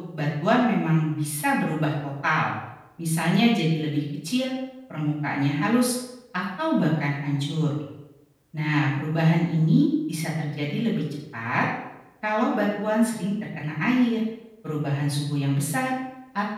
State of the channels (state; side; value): identical; both; correlation 1.00